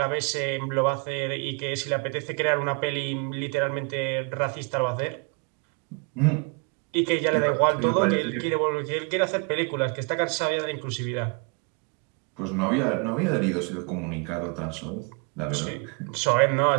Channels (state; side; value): quieter; left; 35.9 dB